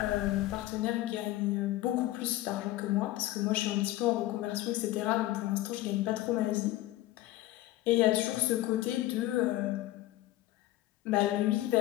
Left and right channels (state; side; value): quieter; right; 16.0 dB